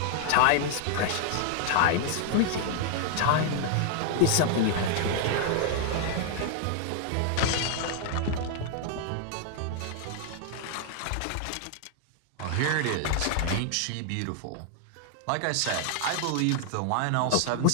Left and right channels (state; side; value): different; both; correlation 0.00